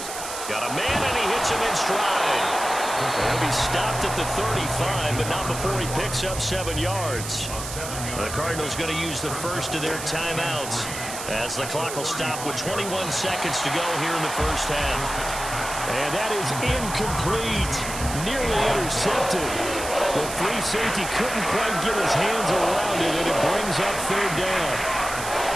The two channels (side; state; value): right; noise; hiss, 8 dB below the sound